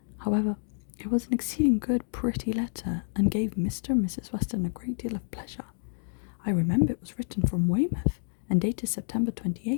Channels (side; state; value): right; silent; digital silence